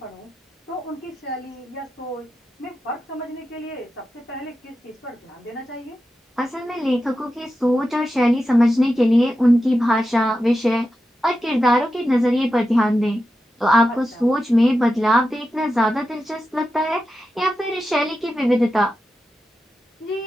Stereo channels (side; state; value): both; normal; correlation 0.90